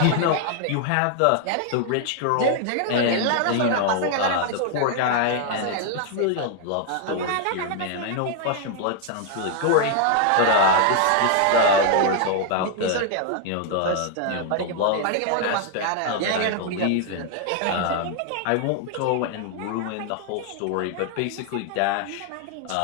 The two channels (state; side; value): different; both; correlation 0.00